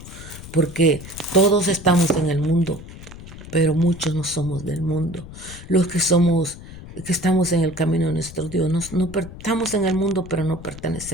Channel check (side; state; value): left; noise; rumble, 15 dB below the sound